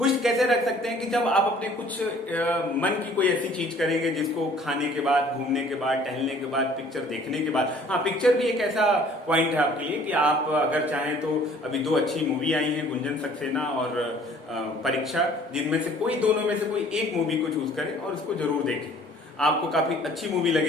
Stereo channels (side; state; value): both; normal; correlation 0.54